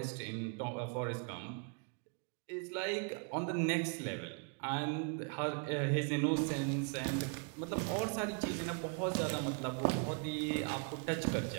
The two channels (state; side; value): quieter; left; 37.9 dB